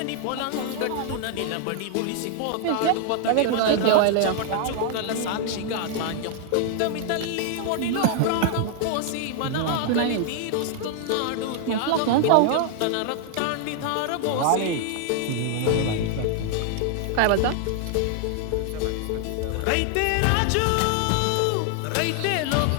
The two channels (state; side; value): different; both; correlation 0.00